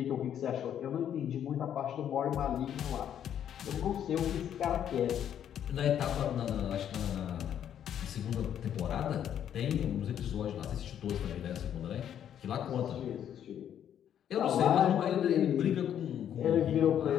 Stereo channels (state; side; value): quieter; right; 9.7 dB